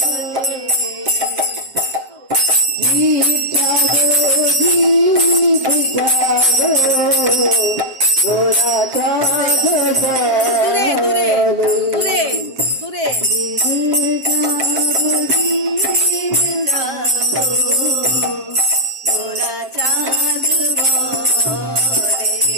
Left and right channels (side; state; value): left; late; 7.6 ms